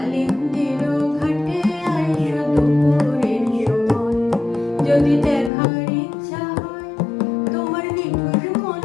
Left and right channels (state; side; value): drops out; right; at 5.5 s